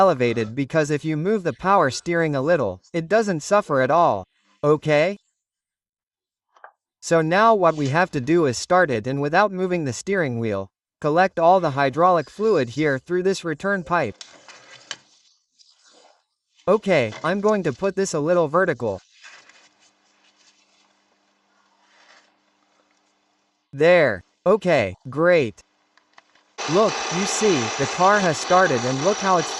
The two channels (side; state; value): both; identical; correlation 1.00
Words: because if you move the power steering a little, it doesn't suffer at all, okay? So now what we have to do is start it and without moving the steering wheel, collect all the hydraulic fluid here through this return pipe. Okay, I'm going to put this a little vertical. There. Okay, great. Look, you see, the car has started and look how it's